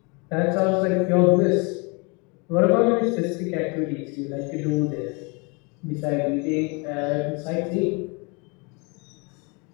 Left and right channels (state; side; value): quieter; right; 31.0 dB